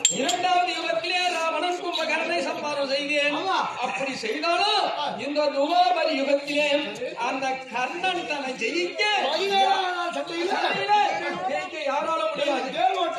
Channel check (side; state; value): both; identical; correlation 1.00